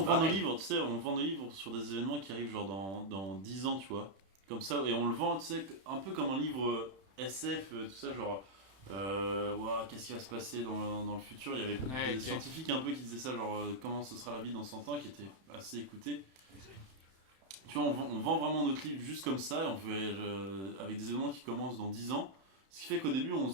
vend nos livres, tu sais, on vend nos livres sur des événements qui arrivent genre dans 10 ans, tu vois. Comme ça, et on le vend, tu sais, un peu comme un livre SF, tout ça, genre. Ouah, qu'est-ce qui va se passer dans le futur? Il y avait des scientifiques un peu qui disaient ça, genre comment ce sera la vie dans 100 ans, qui étaient assez écoutés. Tu vois, on vend vraiment notre livre juste comme ça, et on fait, avec des événements qui commencent dans 10 ans. Ce qui fait qu'au début, on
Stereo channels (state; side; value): late; left; 31 ms